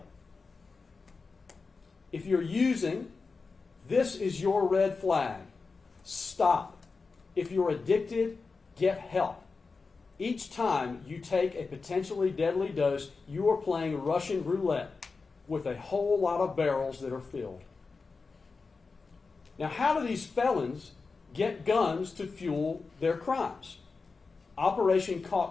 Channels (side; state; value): right; quieter; 4.4 dB